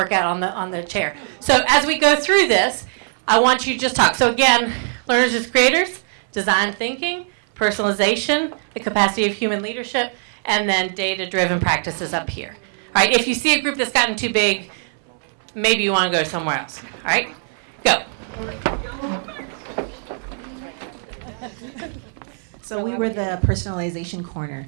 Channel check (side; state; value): left; silent; 65 dB below the other